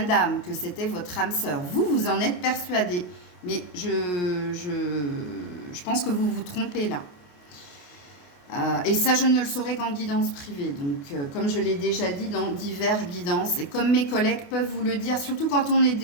d'âme, que c'était votre âme sœur. Vous en êtes persuadé. Mais je pense que vous vous trompez là. Et ça, je ne le saurais qu'en guidance privée. Donc, comme je l'ai déjà dit dans divers guidances, et comme mes collègues peuvent vous le dire, surtout quand on est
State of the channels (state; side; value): late; right; 28 ms